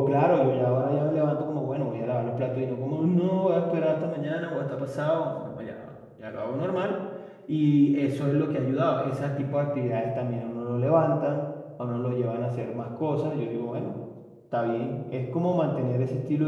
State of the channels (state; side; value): identical; both; correlation 1.00